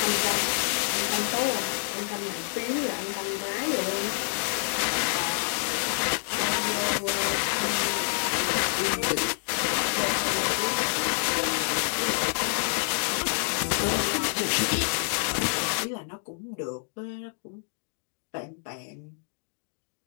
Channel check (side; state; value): right; silent; digital silence